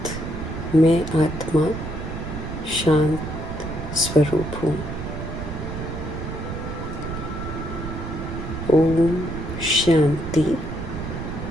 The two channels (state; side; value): noise; right; rumble, 7 dB below the sound